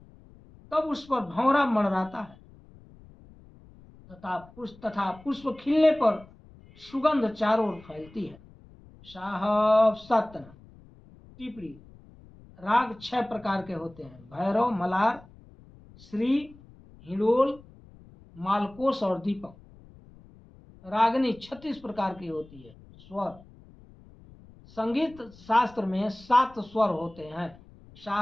तब उस पर भंवरा मंडराता है तथा पुष्प खिलने पर सुगंध चारों ओर फैलती है। साहब सतन। टिप्पणी: राग 6 प्रकार के होते हैं: भैरव, मलार, श्री, हिडोल, मालकोस और दीपक। रागनी 36 प्रकार की होती है। स्वर: संगीत शास्त्र में 7 स्वर होते हैं।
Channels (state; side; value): noise; left; rumble, 23 dB below the sound